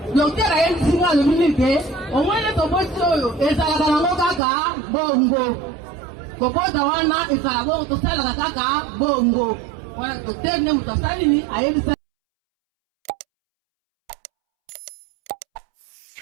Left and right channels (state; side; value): drops out; left; at 4.4 s